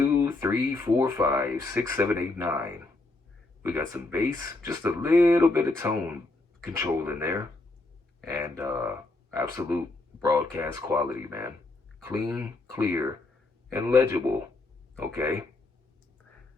3, 4, 5, 6, 7, 8, 9. We got some bass, just a little bit of tone control in there, and absolute broadcast quality, man. Clean, clear, and legible. Okay.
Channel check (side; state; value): right; quieter; 3.1 dB